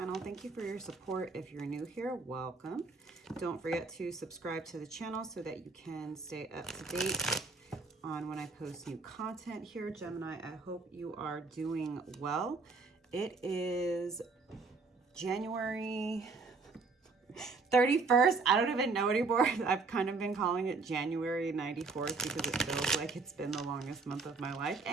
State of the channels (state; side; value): quieter; left; 4.2 dB